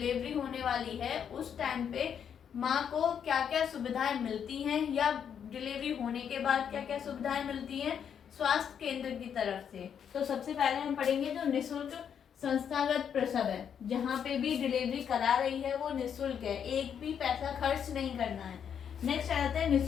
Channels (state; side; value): quieter; right; 8.1 dB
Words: होने वाली है, उस टाइम पे माँ को क्या क्या सुविधाएं मिलती हैं या डिलीवरी होने के बाद क्या क्या सुविधाएं मिलती हैं स्वास्थ्य केंद्र की तरफ से। तो सबसे पहले हम पढ़ेंगे जो निःशुल्क संस्थागत प्रसव है, जहाँ पे भी डिलीवरी करा रही है वो निःशुल्क है, एक भी पैसा खर्च नहीं करना है। नेक्स्ट आता है